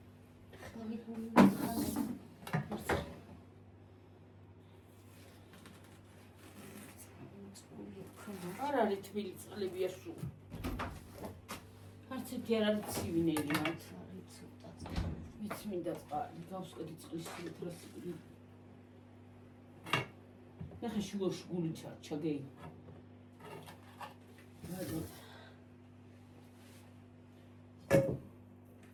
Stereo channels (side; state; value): both; identical; correlation 1.00